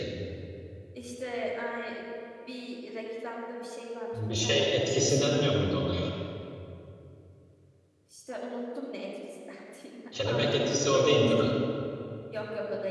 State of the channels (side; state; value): both; identical; correlation 1.00